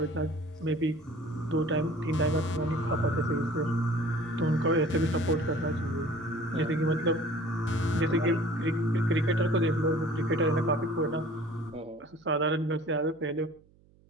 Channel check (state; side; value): noise; right; hum, 30 dB below the sound